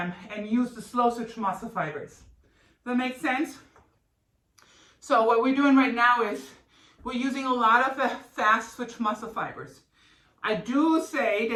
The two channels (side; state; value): both; identical; correlation 1.00